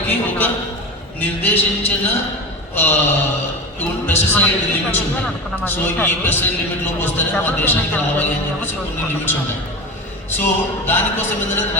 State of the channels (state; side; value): normal; both; correlation 0.26